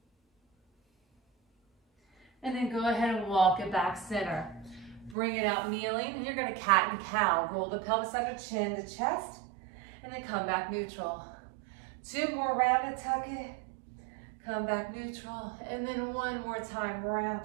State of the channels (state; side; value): drops out; left; at 5.2 s